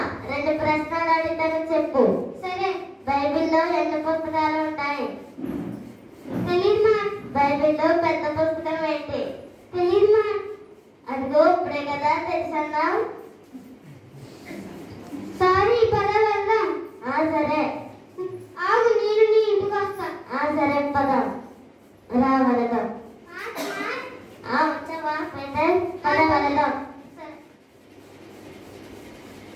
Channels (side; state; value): both; identical; correlation 1.00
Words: 2 ప్రశ్నలు అడుగుతాను, చెప్పు. సరే. బైబిల్లో ఎన్ని పుస్తకాలు ఉంటాయి? తెలీదు మా. బైబిల్లో పెద్ద పుస్తకం ఏంటి? తెలీదు మా. అదిగో ఇప్పుడే కదా తెలుసన్నావు. సారీ, పద వెళ్దాం. సరే. ఆగు, నేను నీ ఇంటికి వస్తా. సరే పద. రా వెళదాం. వచ్చావా పీటర్? పద వెళదాం.